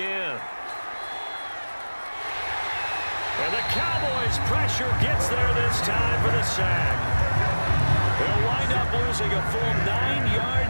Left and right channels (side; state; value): both; inverted; correlation -1.00